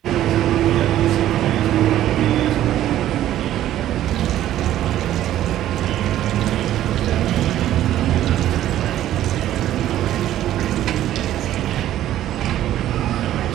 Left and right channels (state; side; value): quieter; left; 12.7 dB